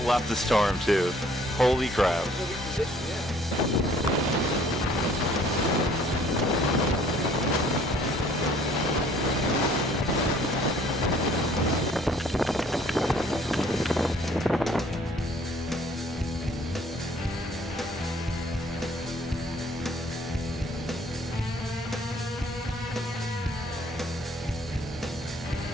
left the storm too. Holy crap.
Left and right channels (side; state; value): both; normal; correlation 0.58